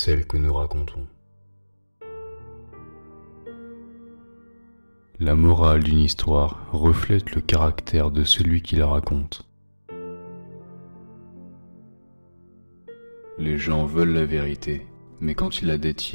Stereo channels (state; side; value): inverted; both; correlation -1.00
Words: que nous racontons. La morale d'une histoire reflète le caractère de celui qui la raconte. Les gens veulent la vérité, mais quand ils la